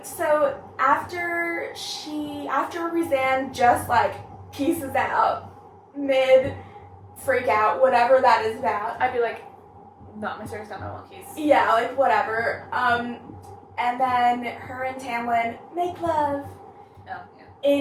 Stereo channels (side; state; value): both; identical; correlation 1.00